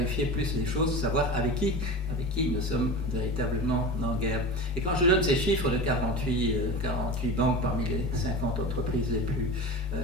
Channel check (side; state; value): both; normal; correlation 0.30